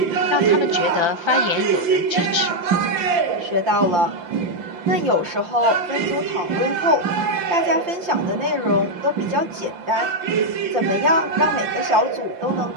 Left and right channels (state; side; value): late; left; 5.8 ms